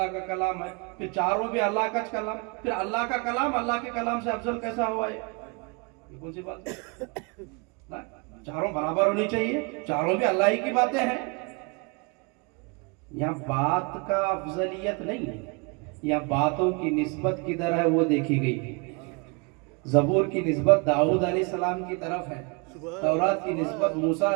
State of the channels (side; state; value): left; quieter; 32.0 dB